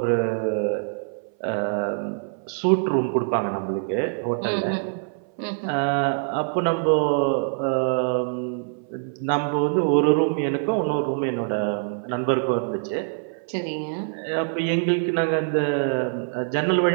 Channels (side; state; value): left; silent; 60 dB below the other